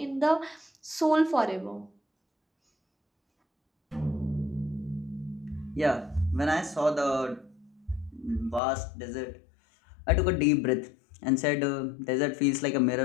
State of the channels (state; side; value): drops out; right; at 8.6 s